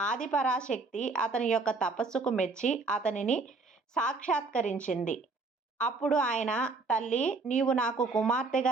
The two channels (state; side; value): quieter; left; 3.9 dB